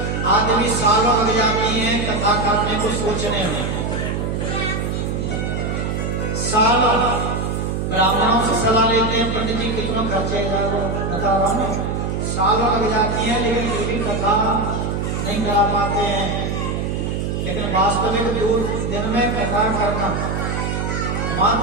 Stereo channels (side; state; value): right; noise; hum, 1 dB below the sound